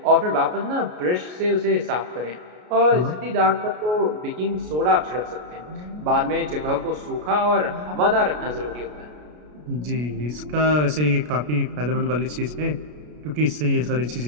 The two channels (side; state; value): left; late; 33 ms